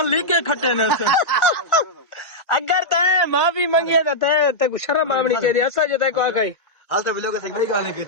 लिखे खट्टे ने अगर तय माफी मांगी तो तय को शर्म आमनी के ऐसा जो तय को आ गई हाल तो ब्लॉग से गई गाने की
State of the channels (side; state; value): right; late; 1.4 ms